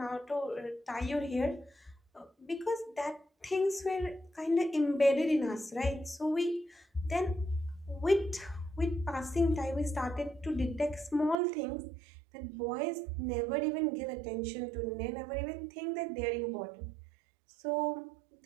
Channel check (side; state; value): left; drops out; at 11.4 s